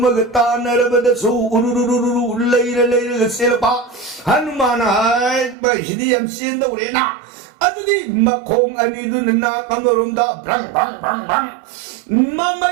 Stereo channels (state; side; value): drops out; left; at 5.6 s